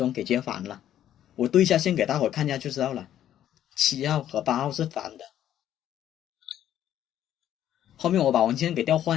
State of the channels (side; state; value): right; quieter; 11.3 dB